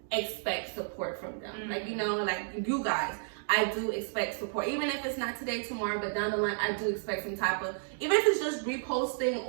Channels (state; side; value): silent; left; digital silence